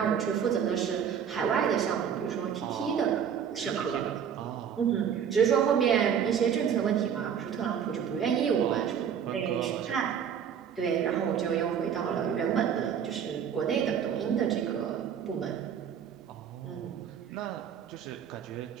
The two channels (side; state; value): left; quieter; 8.1 dB